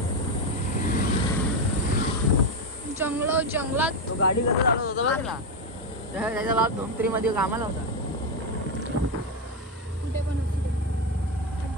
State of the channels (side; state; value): both; normal; correlation 0.08